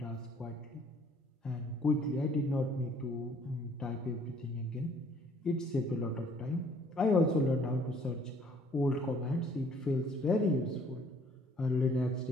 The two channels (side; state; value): both; normal; correlation 0.59